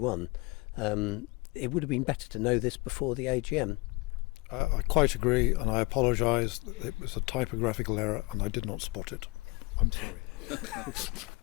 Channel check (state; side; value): quieter; right; 24.7 dB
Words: It would have been better to know this before the AGM. I quite agree, and I apologise. It was a typographical error, and I did not spot it. I'm sorry.